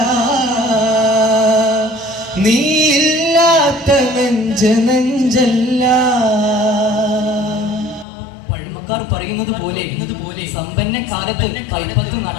നീയില്ലാത്ത നെഞ്ച് നെഞ്ചല്ല. പഴമക്കാർ പറയുന്നത് പോലെ സമ്പന്ന കാലത്ത് കൈപ്പത്ത്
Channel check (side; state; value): right; drops out; at 8.1 s